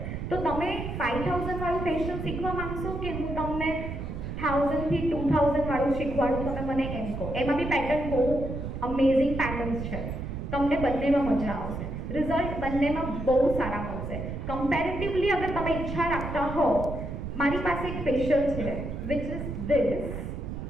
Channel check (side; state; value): right; noise; rumble, 6 dB below the sound